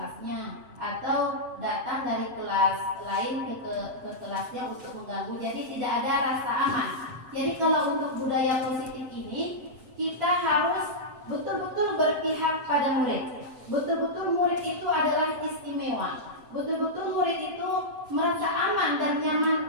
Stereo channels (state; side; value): late; left; 7.8 ms